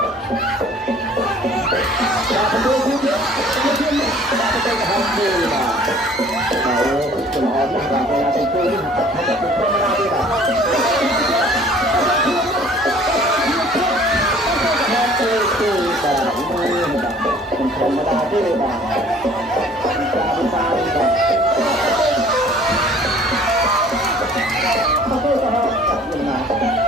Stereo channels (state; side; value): normal; both; correlation 0.52